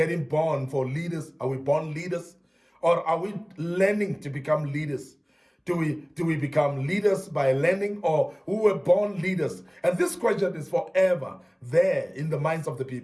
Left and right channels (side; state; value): both; identical; correlation 1.00